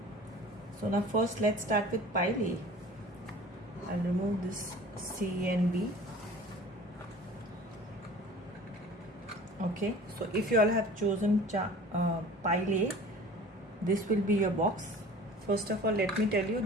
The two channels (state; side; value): normal; both; correlation 0.44